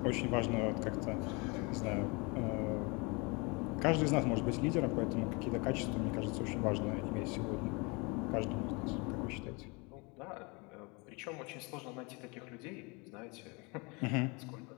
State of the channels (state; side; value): quieter; right; 28.9 dB